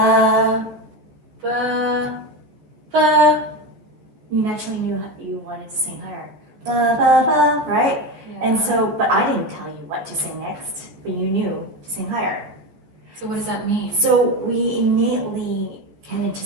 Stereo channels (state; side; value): late; left; 14 ms